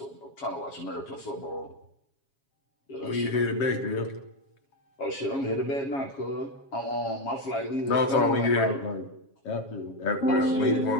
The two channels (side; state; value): right; late; 7.3 ms